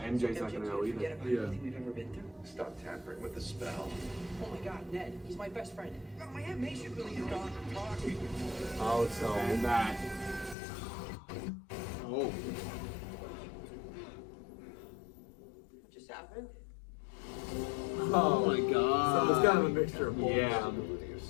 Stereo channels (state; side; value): drops out; right; at 10.6 s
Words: not MJ gonna know can't either. forget about everything we've ever been through. Stop tampering with the spell. Oh my God, Ned, he's my best friend. My Aunt May should really have gone and talked. Oh, so. And that. Oh. What just happened? Oh my God. Someone's got kind of a mixture of both. Yeah. Ability of